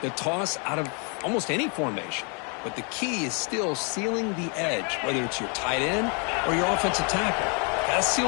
toss out of almost any formation. But the key is still sealing the edge, whether it's your tight end or your offensive tackle. Got to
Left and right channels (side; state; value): right; quieter; 36.7 dB